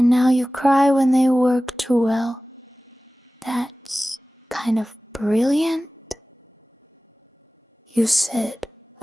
now you cry when they work too well. That's kind of brilliant. You said,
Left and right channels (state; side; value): normal; both; correlation 0.97